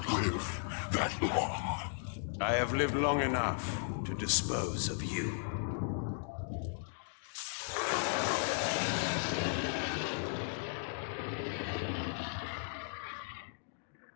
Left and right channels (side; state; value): right; silent; digital silence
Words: live that long. I have lived long enough to dispose of you.